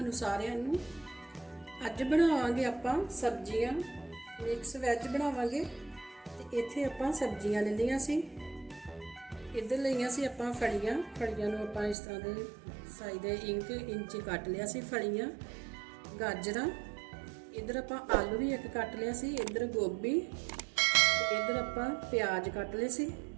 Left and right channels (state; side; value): drops out; left; at 12.0 s